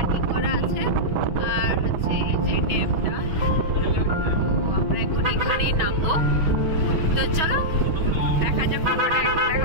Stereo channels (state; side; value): late; left; 6.2 ms